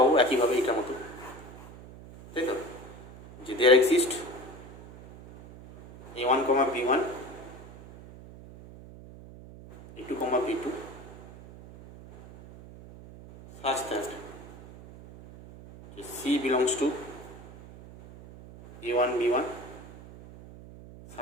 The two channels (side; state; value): right; noise; hum, 17 dB below the sound